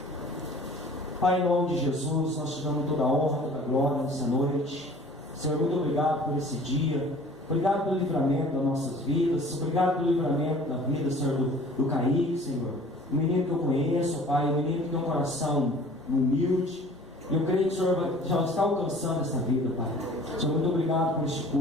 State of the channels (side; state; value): both; normal; correlation 0.48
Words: Pai, em nome de Jesus, nós te damos toda a honra, toda a glória nessa noite. Senhor, muito obrigado por esse dia. Obrigado pelo livramento das nossas vidas. Obrigado pelo livramento da vida, Senhor, do Kaique, Senhor. Um menino que eu conheço, Pai, um menino que tem um coração humilde. E eu creio que o Senhor já está alcançando essa vida, Pai. Senhor, muito obrigado por este